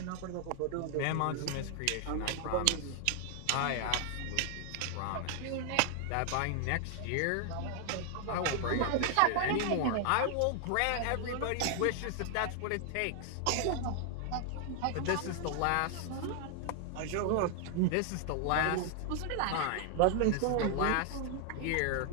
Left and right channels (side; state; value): both; different; correlation 0.00